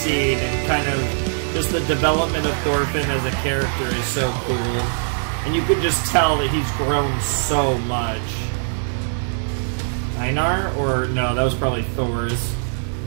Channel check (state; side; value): silent; left; digital silence